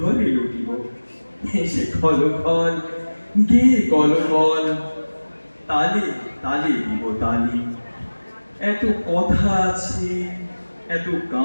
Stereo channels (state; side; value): inverted; both; correlation -1.00